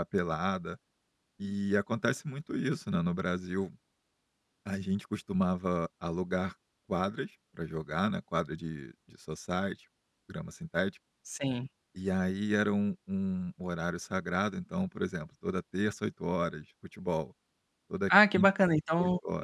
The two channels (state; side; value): identical; both; correlation 1.00